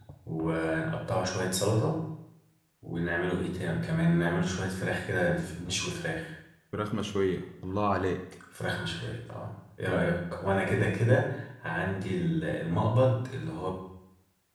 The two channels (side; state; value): both; identical; correlation 1.00